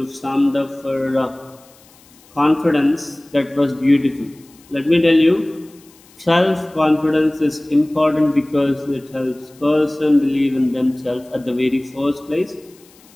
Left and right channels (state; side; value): noise; left; hiss, 28 dB below the sound